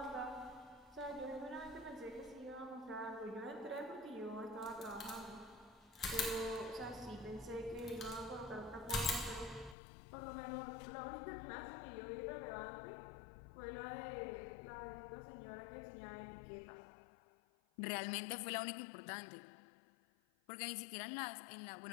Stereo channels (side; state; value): right; drops out; at 9.8 s